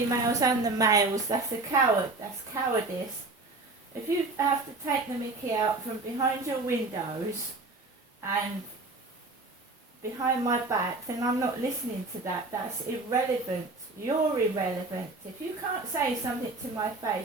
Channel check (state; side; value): quieter; left; 3.3 dB